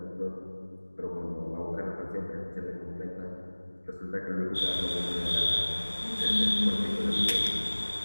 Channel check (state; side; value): inverted; both; correlation -1.00